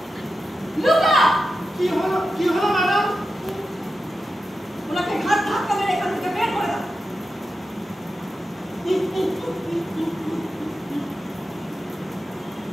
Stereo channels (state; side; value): normal; both; correlation 0.90